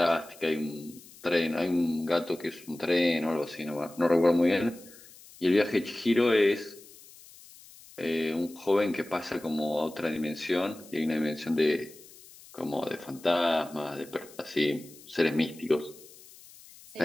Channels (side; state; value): left; noise; hiss, 21 dB below the sound